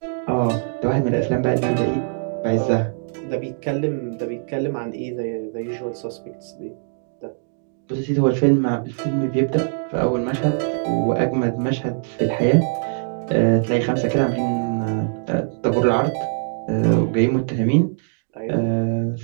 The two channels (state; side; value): silent; left; digital silence